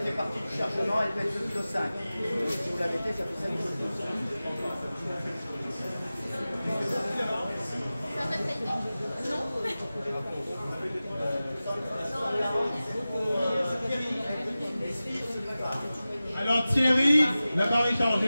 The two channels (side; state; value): both; inverted; correlation -0.96